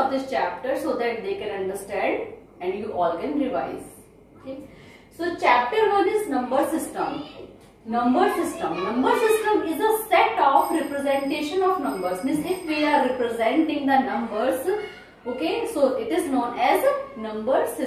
this chapter so that they can understand and you all can revise. Okay, so chapter 1 is number system. Number system. Number system is a set of representation of numbers. Means if we are representing the numbers, okay, so it is known as number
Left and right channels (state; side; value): identical; both; correlation 1.00